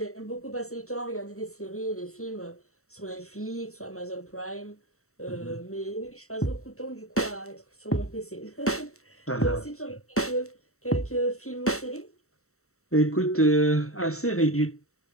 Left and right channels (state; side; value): late; right; 0.64 ms